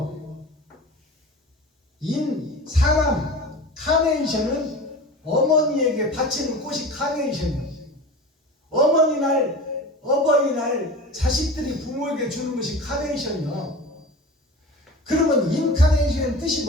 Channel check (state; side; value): normal; both; correlation 0.35